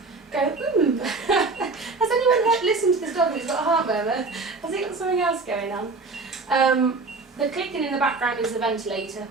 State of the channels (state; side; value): quieter; left; 3.8 dB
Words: go, ooh. Has anyone listened to this dog that's got a heart murmur? Has it got something else going on? The clicking in the background is the ventilator.